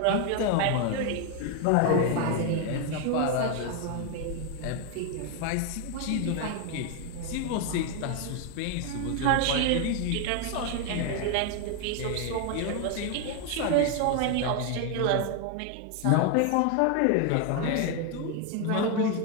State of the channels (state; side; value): different; both; correlation 0.01